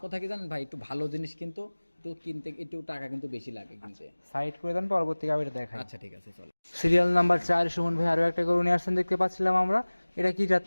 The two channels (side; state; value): both; inverted; correlation -1.00